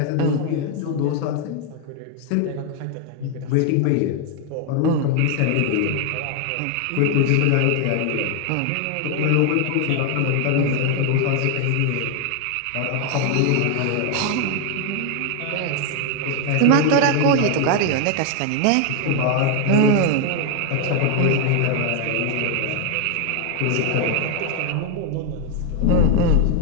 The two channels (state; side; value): different; both; correlation 0.01